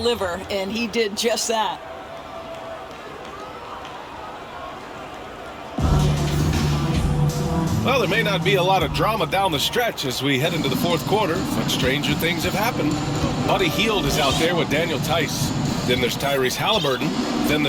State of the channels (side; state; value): both; identical; correlation 1.00